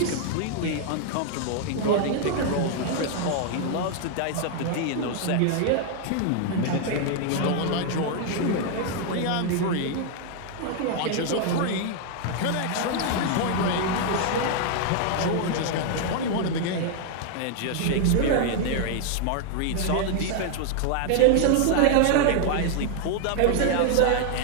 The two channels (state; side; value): different; both; correlation 0.00